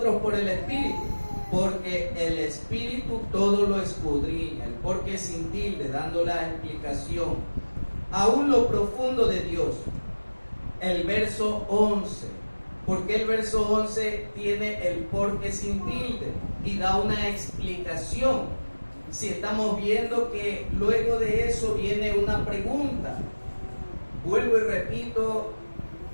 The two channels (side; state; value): both; inverted; correlation -1.00